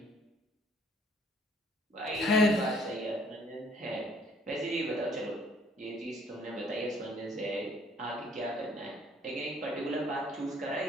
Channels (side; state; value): both; normal; correlation 0.60